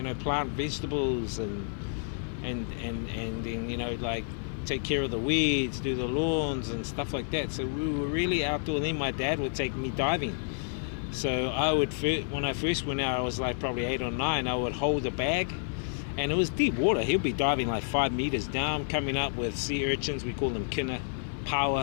know, plant vegetables and then, you know, like take care of the weeds, do the lawns and stuff like that. So we were really outdoor. And then my dad would take me diving. So when I first went out, I was like probably 8 or 9. I would hold a bag, and it was deep water. He'll be diving like 5 meters down, coming up with sea urchins. We call them kina,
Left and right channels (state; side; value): silent; right; 58 dB below the other